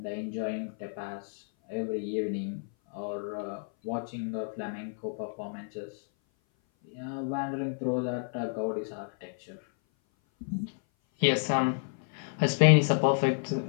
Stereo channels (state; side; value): silent; right; 56 dB below the other